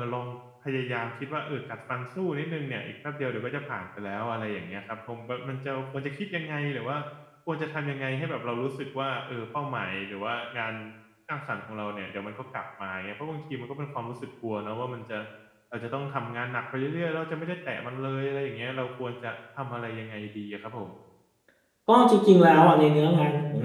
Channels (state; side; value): identical; both; correlation 1.00